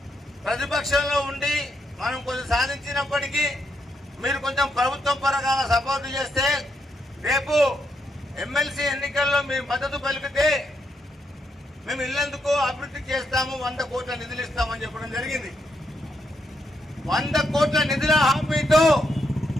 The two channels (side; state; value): both; normal; correlation 0.79